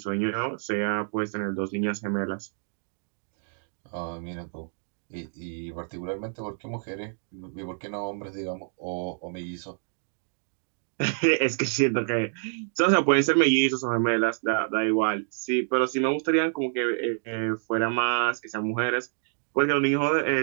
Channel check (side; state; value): left; silent; digital silence